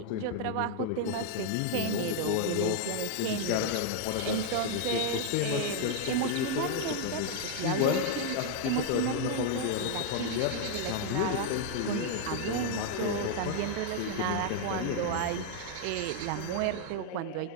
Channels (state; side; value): different; both; correlation 0.00